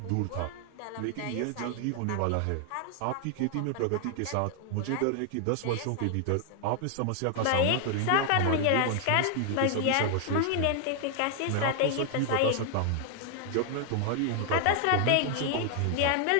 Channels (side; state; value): both; different; correlation 0.00